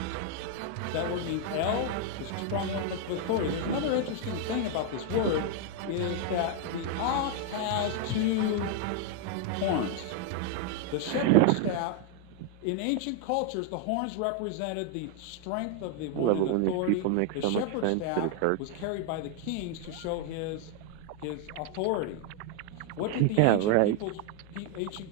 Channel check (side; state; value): both; different; correlation 0.00